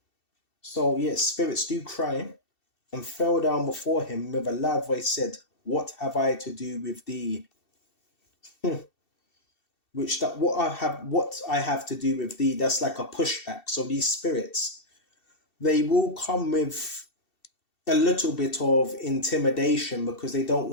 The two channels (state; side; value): late; right; 2.7 ms